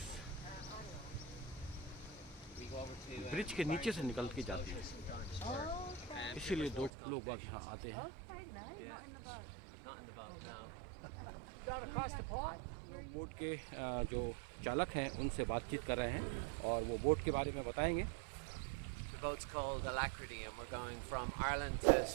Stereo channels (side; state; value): left; drops out; at 6.9 s